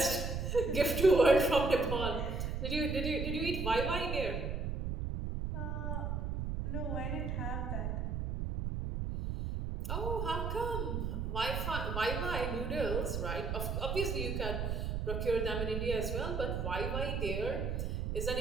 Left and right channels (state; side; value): noise; right; rumble, 2 dB below the sound